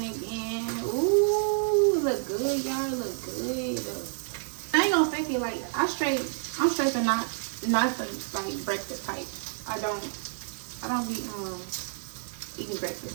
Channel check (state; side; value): silent; left; digital silence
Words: Ooh, it look good, y'all. It look good. I ain't gonna fake it. Like I'm straight to not the like breakfast type. I don't be eating